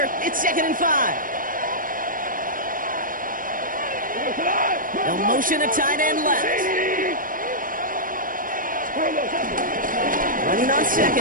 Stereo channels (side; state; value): left; late; 0.40 ms